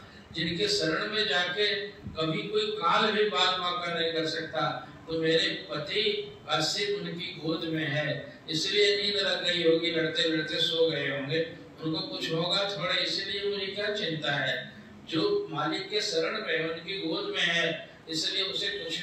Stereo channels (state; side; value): identical; both; correlation 1.00